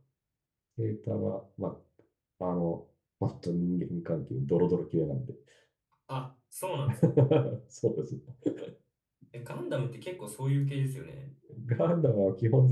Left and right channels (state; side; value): identical; both; correlation 1.00